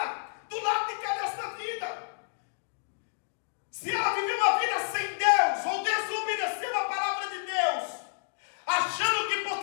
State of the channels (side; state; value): right; silent; digital silence